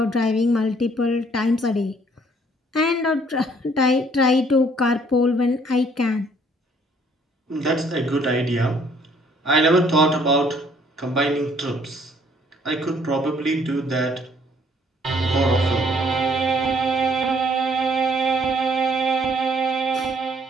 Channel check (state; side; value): normal; both; correlation 0.62